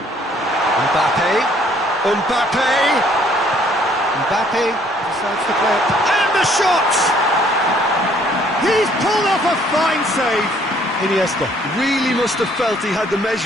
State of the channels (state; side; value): normal; both; correlation 0.62